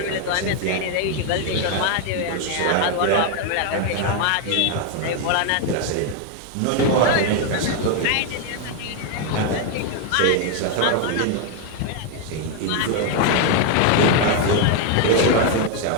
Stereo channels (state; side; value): different; both; correlation 0.01